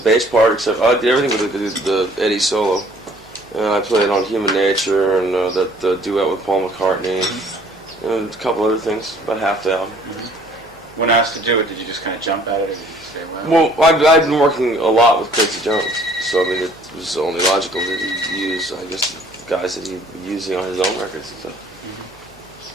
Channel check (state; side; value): normal; both; correlation 0.57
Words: bass part, except I did everything with the Eddie solo. And I played on Human Nature and that duet with Paul McCartney, and a couple other things, about half the album. When asked to do it, did you just kind of jump at it, or did you say, well? Well, I've been working a lot with Quincy Jones, so I mean, it was only logical that he use, I guess, the guys that he was using on his own records and stuff.